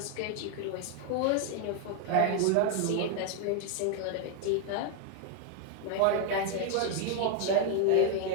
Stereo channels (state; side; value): different; both; correlation 0.00